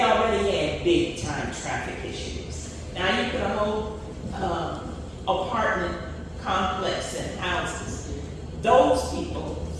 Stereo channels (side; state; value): both; identical; correlation 1.00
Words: already had big time traffic issues. Now you put a whole apartment complex and houses. Those people,